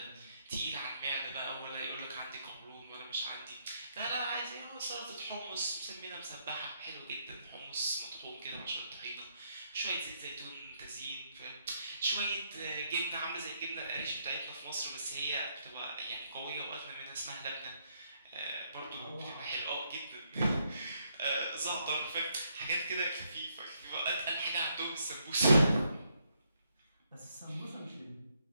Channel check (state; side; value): inverted; both; correlation -0.74